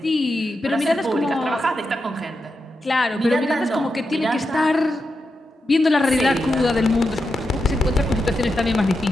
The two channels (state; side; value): normal; both; correlation 0.88